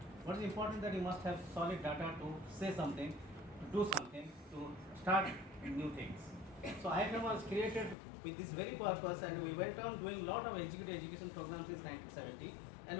What is important that you must have solid data to say something, to do something, to start new things. So IFM was created with this very purpose, and we went on doing a lot of executive education programs since 1970, and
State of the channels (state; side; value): drops out; right; at 8.0 s